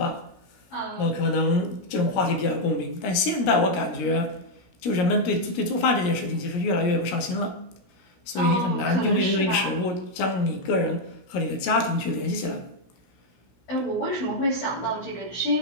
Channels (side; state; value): right; late; 17 ms